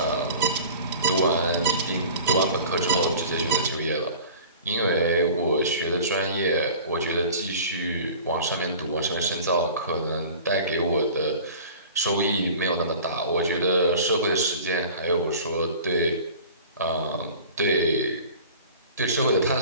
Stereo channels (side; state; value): both; inverted; correlation -0.42